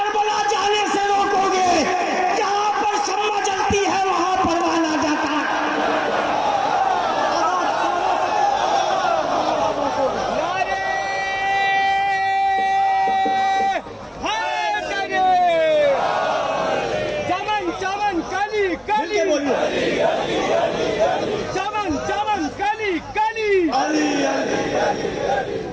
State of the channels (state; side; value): identical; both; correlation 1.00